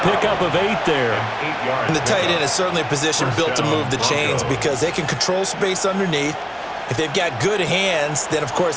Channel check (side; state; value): both; identical; correlation 1.00